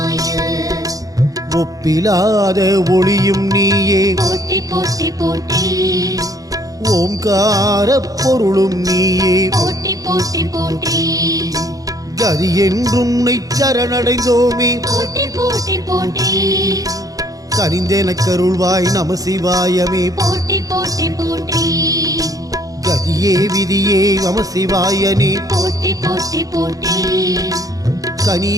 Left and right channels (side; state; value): left; late; 0.17 ms